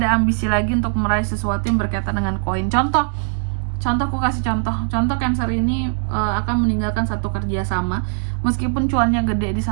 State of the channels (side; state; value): left; silent; 66 dB below the other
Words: ada ambisi lagi untuk meraih sesuatu yang berkaitan dengan koin. Contoh aku kasih contoh Cancer ini akan meninggalkan satu kerjasama meskipun cuannya gede di